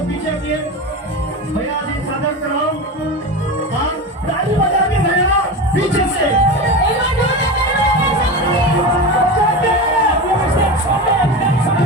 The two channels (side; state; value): both; normal; correlation 0.24